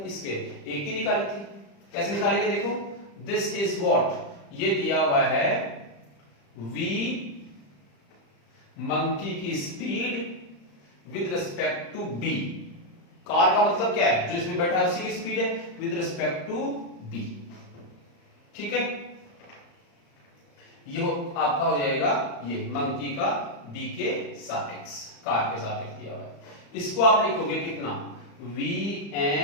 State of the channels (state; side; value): late; right; 35 ms